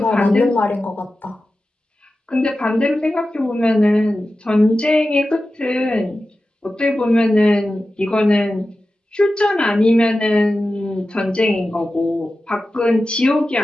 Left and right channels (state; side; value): normal; both; correlation 0.93